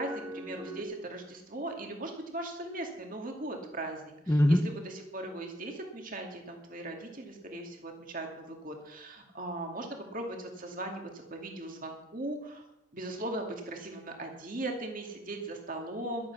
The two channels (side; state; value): both; normal; correlation 0.64